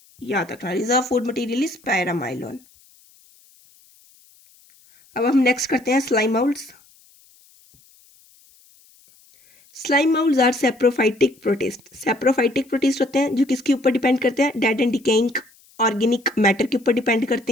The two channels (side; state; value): left; noise; hiss, 29 dB below the sound